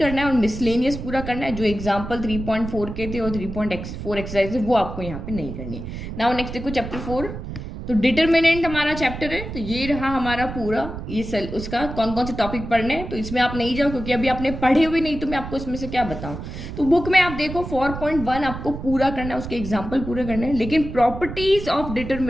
है और मिसलेनियस पूरा करना है। जो एग्जाम्पल 3.4 के थे और 3.4 एक्सरसाइज है वो आपको यहाँ पे नहीं करनी है। नाउ नेक्स्ट देखो चैप्टर 4, तो डिटरमिनेंट हमारा चैप्टर है, तो ये रहा हमारा पूरा, ये उसका कौन कौन से टॉपिक पढ़ने हैं। तो इसमें आप नहीं जाओ, क्योंकि अभी आपने पढ़े हुए नहीं, तो मैं आपको इसमें से क्या बताऊं। तो बुक में आप देखो 4.1 आपको पूरा करना है, उसके एग्जाम्पल पूरे करने हैं। लेकिन प्रॉपर्टीज ऑफ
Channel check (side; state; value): right; noise; rumble, 8 dB below the sound